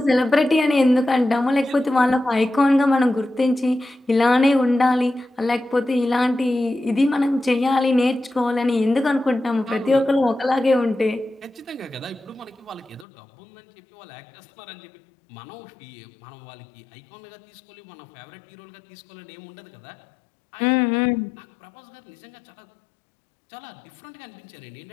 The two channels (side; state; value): right; drops out; at 13.1 s